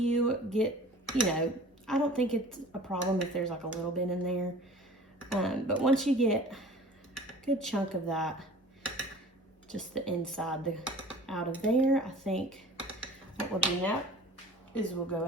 get, you know, I don't think it's a problem if there's like a little bit in there, but once you get a good chunk of that, just the inside out of there, I think what we'll do now is we'll go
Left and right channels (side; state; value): both; normal; correlation 0.44